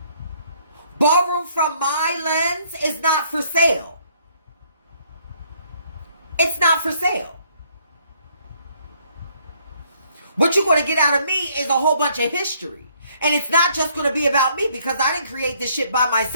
Ballroom from my lens is not for sale. It's not for sale. What you're going to get out of me is a whole bunch of history. And it's not just going to be about me because I didn't create this shit by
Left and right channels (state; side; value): inverted; both; correlation -0.66